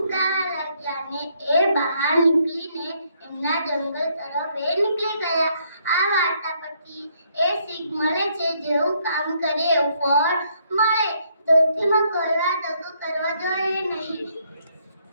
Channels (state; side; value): inverted; both; correlation -0.71